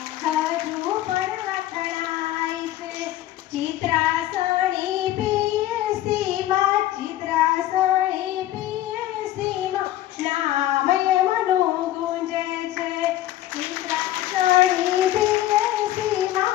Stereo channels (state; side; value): quieter; right; 14.0 dB